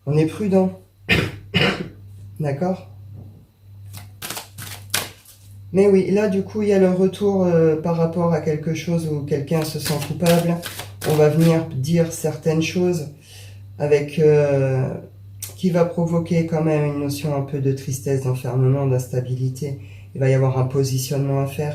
on est prudent. D'accord? Mais oui, là, du coup, il y a le retour par rapport à quelque chose où quelqu'un se sent coupable. On va venir dire certaines choses avec qui va provoquer quand même une notion un peu de tristesse, d'enfermement, d'instabilité. Il va y avoir un positionnement à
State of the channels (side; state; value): both; identical; correlation 1.00